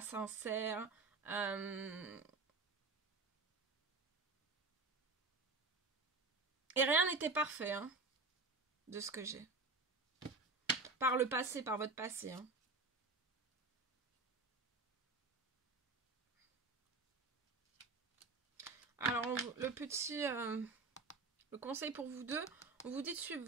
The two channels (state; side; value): quieter; left; 3.8 dB